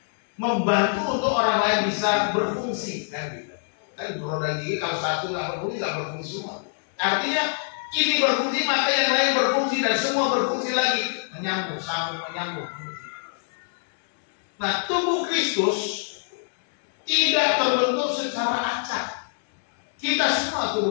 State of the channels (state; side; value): silent; right; 62 dB below the other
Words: membantu untuk orang lain bisa berfungsi, kan gitu. Kan roda gigi kalau satu nggak berfungsi semua. Artinya ini berfungsi maka yang lain berfungsi dan semua berfungsi lagi, menyambung, sambung, menyambung. Nah, tubuh Kristus tidak terbentuk secara acak. Kita semua